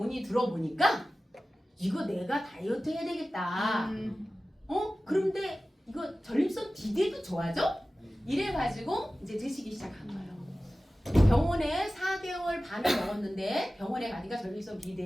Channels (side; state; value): both; normal; correlation 0.96